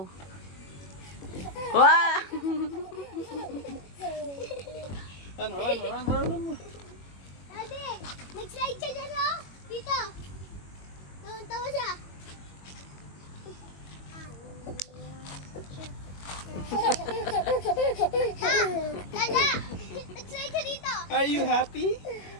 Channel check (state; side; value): late; right; 21 ms